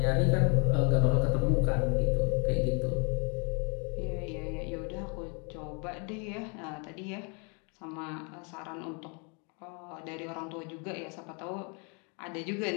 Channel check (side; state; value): right; quieter; 34.7 dB